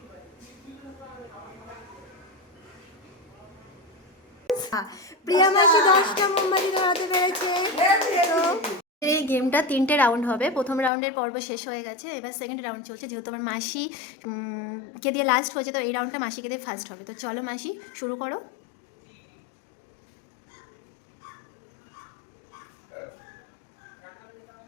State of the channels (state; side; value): drops out; right; at 10.9 s